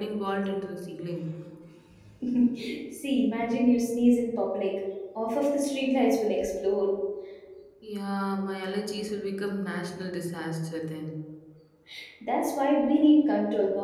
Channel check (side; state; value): both; identical; correlation 1.00